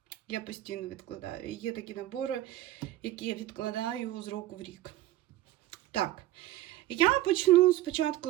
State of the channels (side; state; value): left; quieter; 15.0 dB